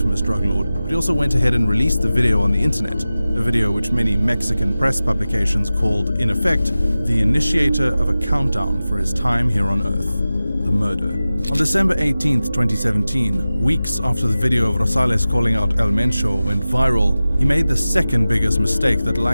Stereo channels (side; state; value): both; inverted; correlation -0.96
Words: drug lord, but he also went ahead and released the video on the internet, a video which many Mexican press publications called, in effect, the initiator of a countdown for his time here on Earth, the murder. On December 18th, 2017, weeks after the video of Rosales calling out El Mencho went viral, he made the second biggest mistake that